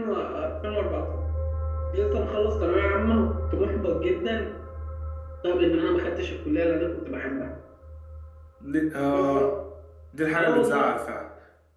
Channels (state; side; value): identical; both; correlation 1.00